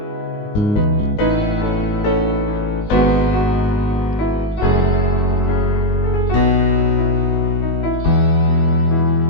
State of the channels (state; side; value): late; right; 19 ms